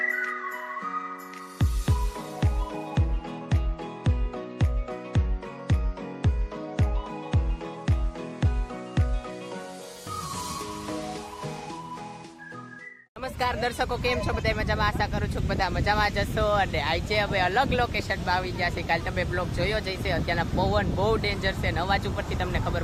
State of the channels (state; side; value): identical; both; correlation 1.00